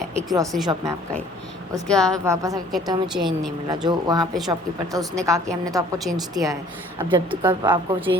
एक grocery shop में आप गए, उसके बाद वापस आकर कहते हो हमें चेंज नहीं मिला. जो वहाँ पे शॉपकीपर था उसने कहा कि हमने तो आपको चेंज दिया है. अब जब तक आपको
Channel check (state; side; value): normal; both; correlation 0.54